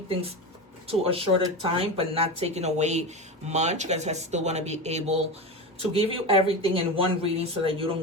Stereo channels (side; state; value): both; normal; correlation 0.22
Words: things to a shorter time but not taking away much, because I still want to be able to give you everything in one reading so that you